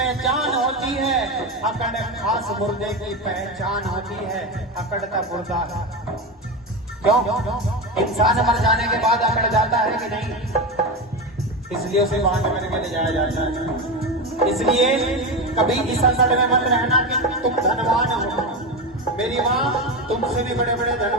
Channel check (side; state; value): both; normal; correlation 0.18